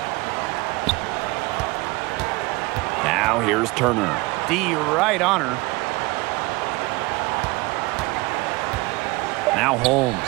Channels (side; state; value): left; quieter; 23.3 dB